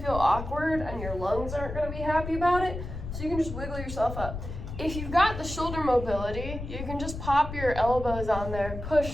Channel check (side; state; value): left; noise; rumble, 8 dB below the sound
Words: awkward and your lungs aren't gonna be happy about it, so you can just wiggle yourself up. If you've got the shoulder mobility, you can just pop your elbows on there,